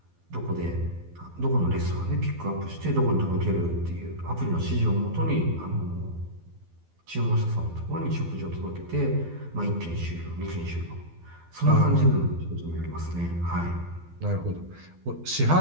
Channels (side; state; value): left; late; 12 ms